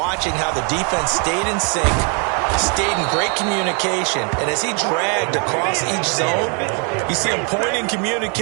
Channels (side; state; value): left; quieter; 37.8 dB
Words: how the defense stayed in sync, stayed in great communication. And as he dragged across each zone, you see him pointing,